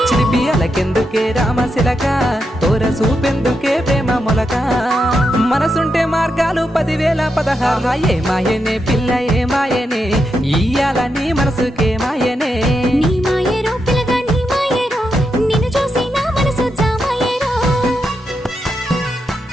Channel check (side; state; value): both; normal; correlation 0.84